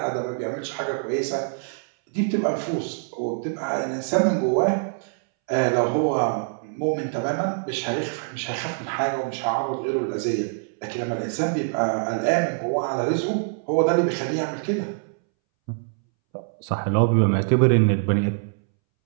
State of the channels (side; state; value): left; silent; 62 dB below the other